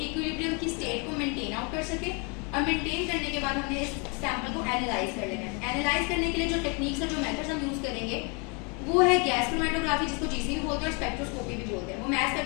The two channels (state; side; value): quieter; right; 33.2 dB